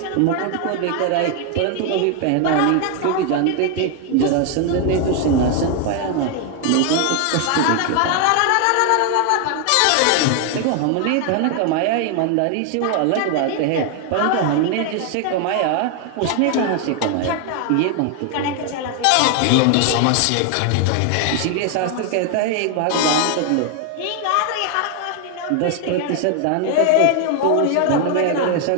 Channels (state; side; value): different; both; correlation 0.00